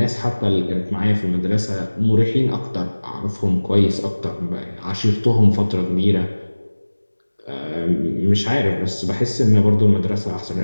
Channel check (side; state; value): both; inverted; correlation -1.00